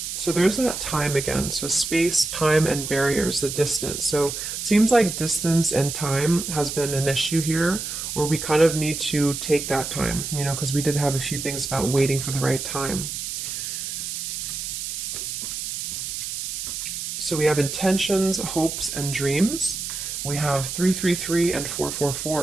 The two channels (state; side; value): noise; right; hiss, 5 dB below the sound